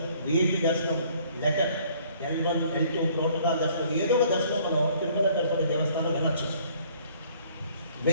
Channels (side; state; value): both; inverted; correlation -0.59